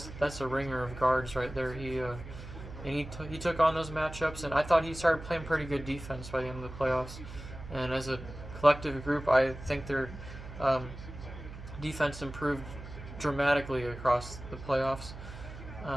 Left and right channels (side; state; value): right; noise; hum, 12 dB below the sound